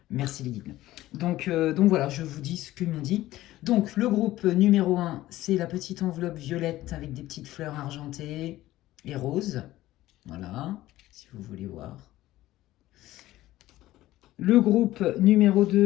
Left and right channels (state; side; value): quieter; right; 15.8 dB